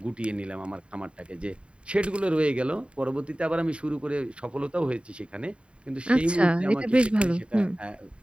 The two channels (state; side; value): late; left; 0.056 ms